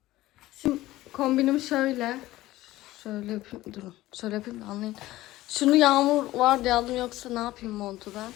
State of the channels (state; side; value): quieter; right; 16.6 dB